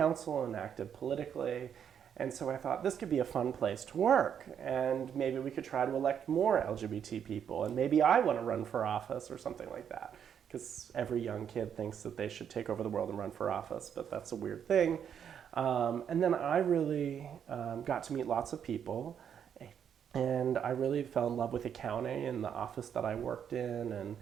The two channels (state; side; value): quieter; left; 8.3 dB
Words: and active politically. And so I thought this could be a fun place to work, and maybe we could try to elect more LGBT people, and maybe I want to run for office or something like that. Because every young kid thinks that they should take over the world and run for office, but that's a weird thing. And then I really got to meet lots of people, and I really fell in love with accounting and the office that I worked in and